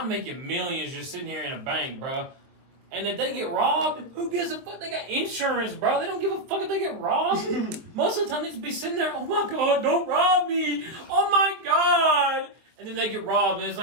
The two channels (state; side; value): late; left; 23 ms